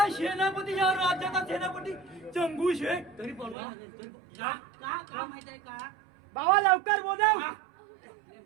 सेनापती या राज्याचा सेनापती चंगू शेख तरी बोलवा तरी का का का माहित आहे का बाबा लवकर बोलव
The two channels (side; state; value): left; drops out; at 3.6 s